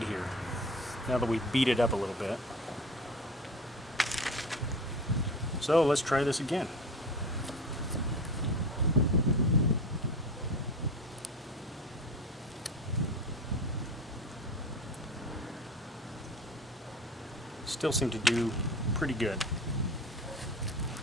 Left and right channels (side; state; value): both; normal; correlation 0.33